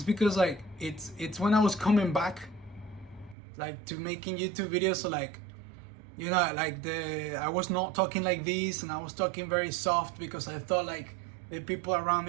because like it's when I was coming back like to making YouTube videos, so like like I was not talking like this, and I was talking very soft because I thought like the people around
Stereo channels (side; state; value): left; drops out; at 3.4 s